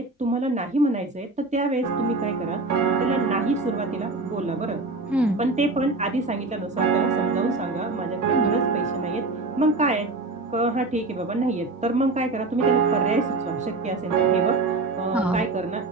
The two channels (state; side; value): quieter; left; 3.4 dB